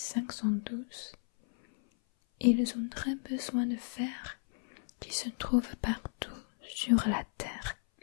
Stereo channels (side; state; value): right; silent; 55 dB below the other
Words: ils ont très besoin de fer qui se trouve partout sur la Terre,